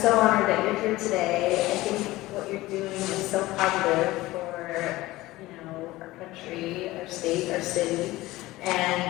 honored that you're here today. I think what you're doing is so positive for, our country, our state, our city.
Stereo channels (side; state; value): right; quieter; 18.3 dB